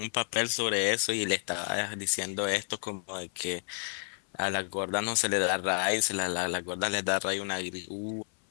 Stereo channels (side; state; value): right; silent; 57 dB below the other